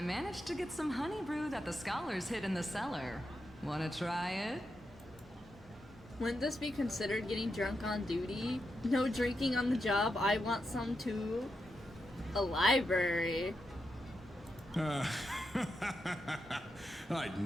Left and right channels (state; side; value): normal; both; correlation 0.85